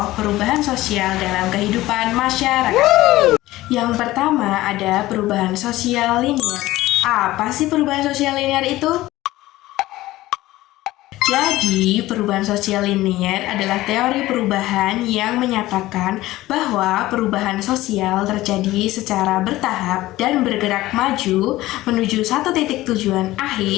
perubahan sosial dalam kehidupan masyarakat. Yang pertama ada perubahan sosial linear. Apa sih perubahan sosial linear itu? Jadi, perubahan sosial linear adalah teori perubahan yang menyatakan bahwa perubahan sosial terjadi secara bertahap dan bergerak maju menuju satu titik tujuan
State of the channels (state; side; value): quieter; right; 17.0 dB